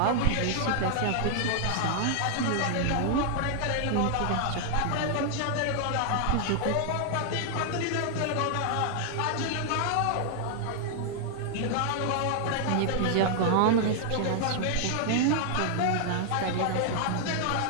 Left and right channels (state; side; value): different; both; correlation 0.00